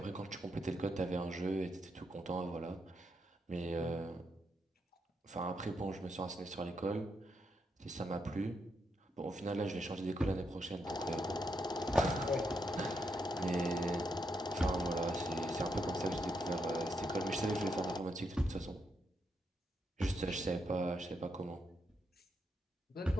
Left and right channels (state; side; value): normal; both; correlation 0.80